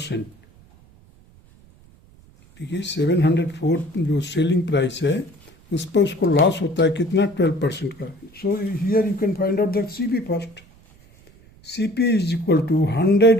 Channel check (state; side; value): noise; right; rumble, 26 dB below the sound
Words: देखिए 704 जो selling price है उस पर उसको loss होता है कितना 12% का. So here you can find out the CP first. CP is equal to